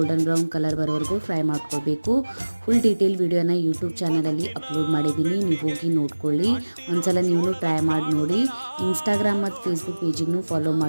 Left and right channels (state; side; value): inverted; both; correlation -1.00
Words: ಬ್ರೌನ್ ಕಲರ್ ಬರೋವರೆಗೂ ಫ್ರೈ ಮಾಡ್ಕೊಳ್ಬೇಕು. ಫುಲ್ ಡೀಟೇಲ್ ವಿಡಿಯೋನ ಯೂಟ್ಯೂಬ್ ಚಾನಲಲ್ಲಿ ಅಪ್ಲೋಡ್ ಮಾಡಿದ್ದೀನಿ, ನೀವು ಹೋಗಿ ನೋಡ್ಕೊಳ್ಳಿ. ಒಂದ್ಸಲ ನೀವು ಟ್ರೈ ಮಾಡಿ ನೋಡಿ. ಇನ್ಸ್ಟಾಗ್ರಾಮ್ ಮತ್ತು ಫೇಸ್ಬುಕ್ ಪೇಜಿಗೂ ಫಾಲೋ